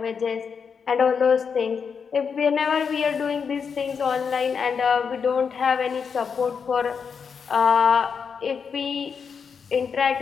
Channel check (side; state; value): right; quieter; 6.2 dB